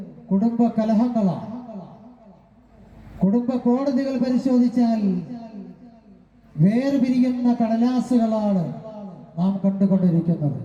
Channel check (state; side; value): identical; both; correlation 1.00